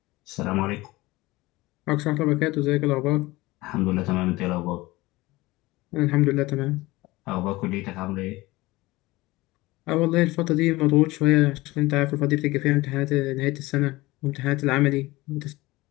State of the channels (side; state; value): right; quieter; 20.1 dB